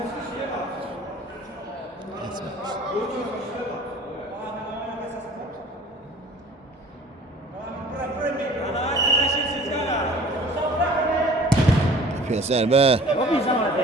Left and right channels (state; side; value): normal; both; correlation 0.48